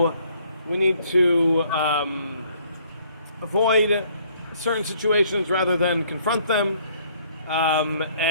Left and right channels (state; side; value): inverted; both; correlation -0.62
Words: we need to avoid certain situations rather than confront them,